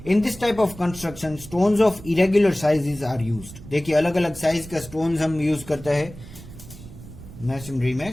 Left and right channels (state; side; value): noise; right; rumble, 16 dB below the sound